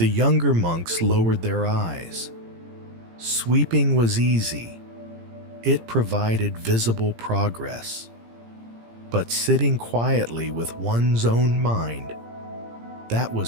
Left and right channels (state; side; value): late; left; 17 ms